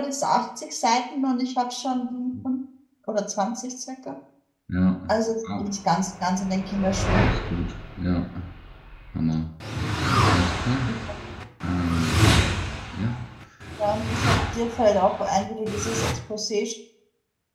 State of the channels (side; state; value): both; identical; correlation 1.00